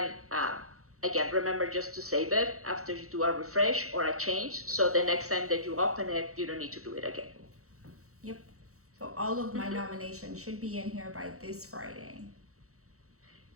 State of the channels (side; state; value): left; late; 0.64 ms